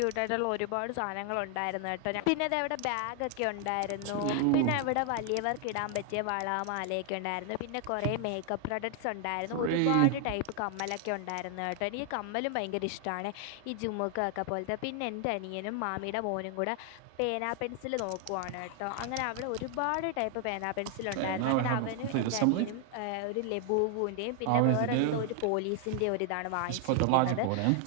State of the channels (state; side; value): different; both; correlation 0.00